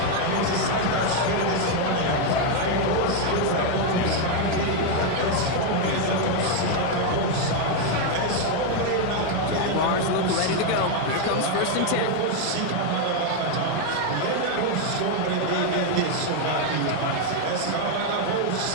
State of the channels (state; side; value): different; both; correlation 0.01